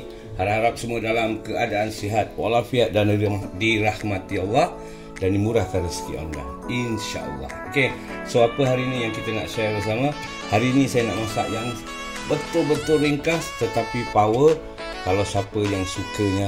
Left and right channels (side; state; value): both; identical; correlation 1.00